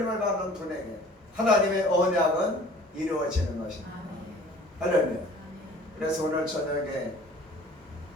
받는 분에게 하나님의 언약은 이루어지는 것입니다. 할렐루야. 그래서 오늘 저녁에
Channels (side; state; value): both; normal; correlation 0.49